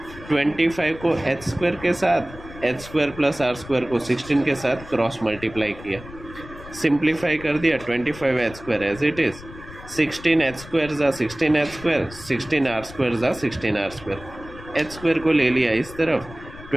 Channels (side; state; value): left; noise; rumble, 17 dB below the sound